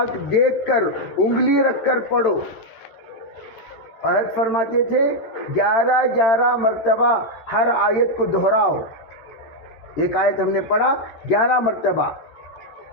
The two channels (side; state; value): right; late; 13 ms